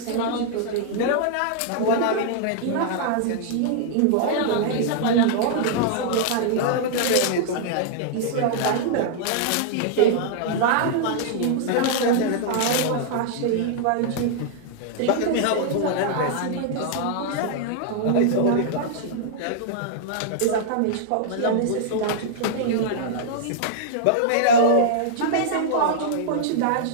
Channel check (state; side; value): different; both; correlation -0.01